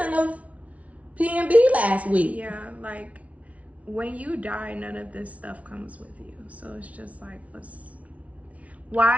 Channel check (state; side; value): late; left; 0.066 ms